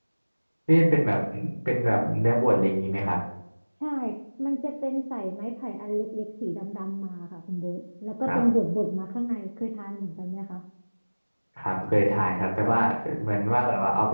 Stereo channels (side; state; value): both; inverted; correlation -1.00